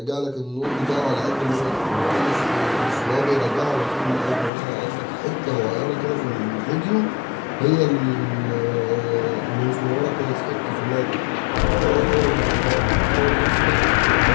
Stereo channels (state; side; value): drops out; right; at 4.5 s